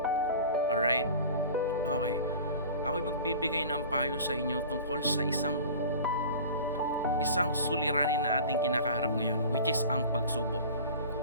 Alright? Okay. Ako'y magbibigay ng payo sa inyo tungkol sa isang suliranin na ating kinakaharap ngayon, which is ang pagsubok.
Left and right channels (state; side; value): inverted; both; correlation -0.40